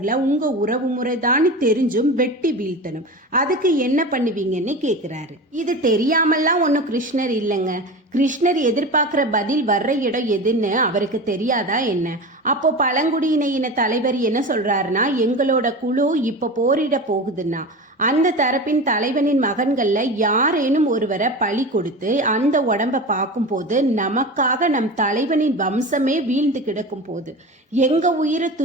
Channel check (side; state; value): both; normal; correlation 0.29